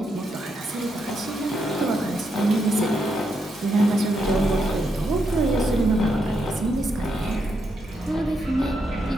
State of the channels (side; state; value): both; normal; correlation 0.80